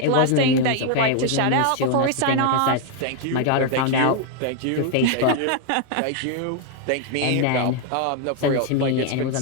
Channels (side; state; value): both; different; correlation 0.00